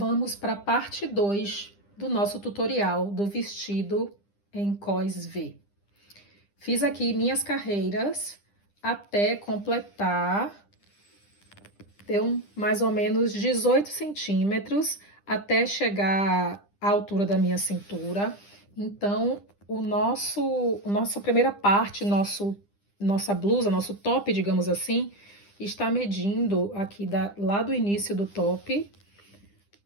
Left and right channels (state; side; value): late; right; 10 ms